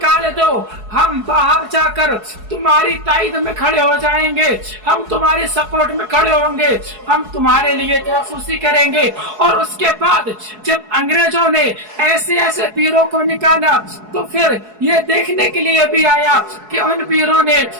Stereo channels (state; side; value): late; left; 4.7 ms